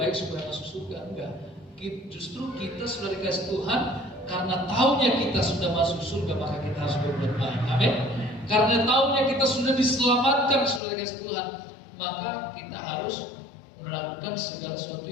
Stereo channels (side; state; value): right; drops out; at 10.8 s